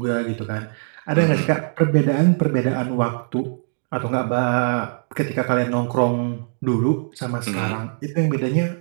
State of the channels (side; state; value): left; silent; digital silence